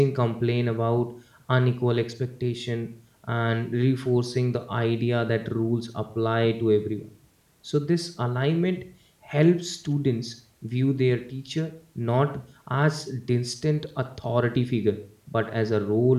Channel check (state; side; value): identical; both; correlation 1.00